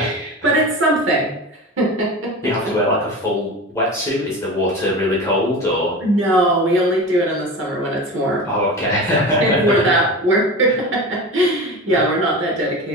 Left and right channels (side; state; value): both; normal; correlation 0.30